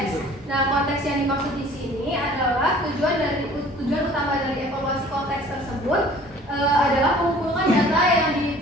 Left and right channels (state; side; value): normal; both; correlation 0.50